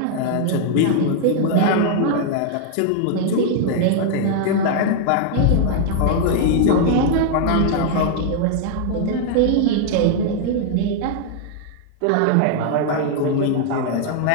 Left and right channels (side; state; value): both; different; correlation 0.00